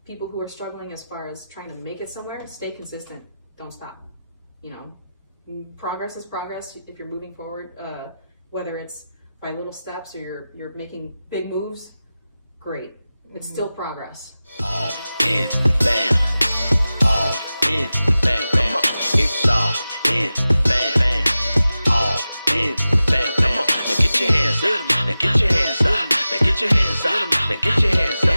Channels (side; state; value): both; inverted; correlation -0.95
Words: people who are struggling as far as trying to make it somewhere, stay consistent. Don't stop. You know, progress is progress. If you're moving forward, whether it's by little steps or you're making big moves, great. It's still progress. All in the fam. All in the fam. Come on. It's all in the fam. All in the fam. Come on. Now get your hands up. Now get your hands up. Now get your hands up. Now get your hands